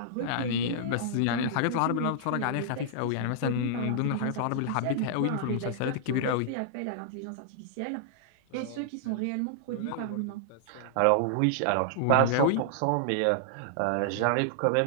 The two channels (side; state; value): both; different; correlation -0.01